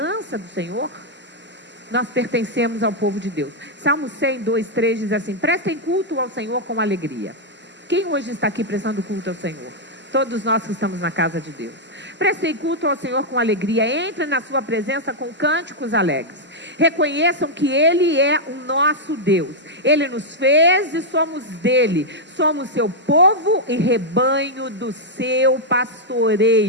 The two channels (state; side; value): normal; both; correlation -0.04